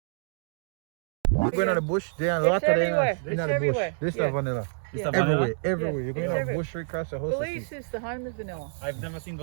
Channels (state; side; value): silent; left; digital silence